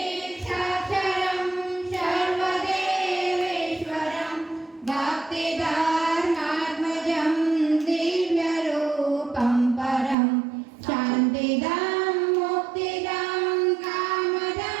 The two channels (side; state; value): left; drops out; at 10.2 s